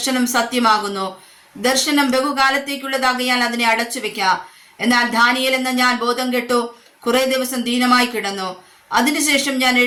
സത്യമാകുന്നു. ദർശനം ബഹുകാലത്തേക്കുള്ളതാകിയാൽ അതിനെ അടച്ചു വെക്കാം. എന്നാൽ ദാനിയേൽ എന്ന ഞാൻ ബോധം കെട്ടു കുറെ ദിവസം ദീനമായി കിടന്നു. അതിനുശേഷം ഞാൻ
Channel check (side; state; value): both; identical; correlation 1.00